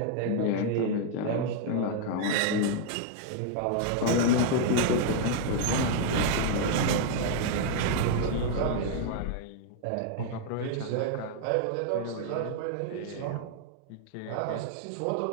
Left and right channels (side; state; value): both; different; correlation -0.01